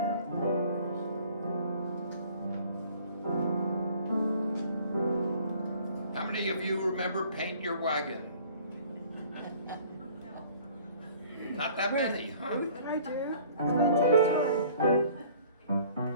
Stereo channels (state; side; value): inverted; both; correlation -0.53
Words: How many of you remember Paint Your Wagon? Not that many, huh? I do. I'm going to tell you a story.